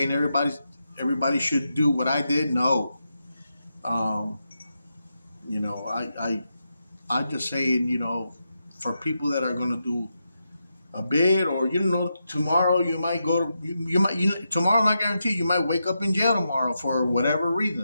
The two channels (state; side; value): inverted; both; correlation -0.86